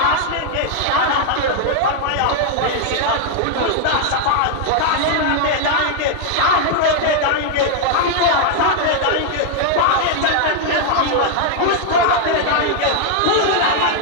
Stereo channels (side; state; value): both; different; correlation 0.00